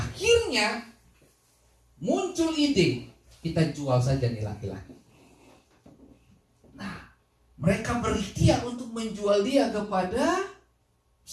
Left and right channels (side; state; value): both; identical; correlation 1.00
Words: muncul ide, kita jual saja nih laki-laki. Nah, mereka berikhtiar untuk menjual dia kepada